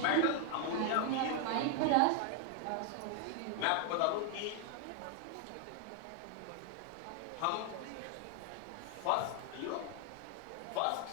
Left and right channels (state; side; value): different; both; correlation 0.00